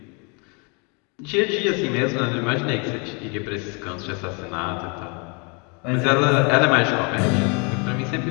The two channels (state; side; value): quieter; right; 33.4 dB